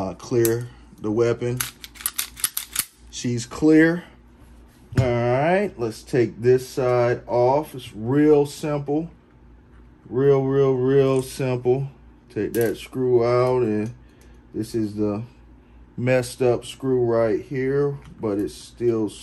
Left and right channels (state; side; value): identical; both; correlation 1.00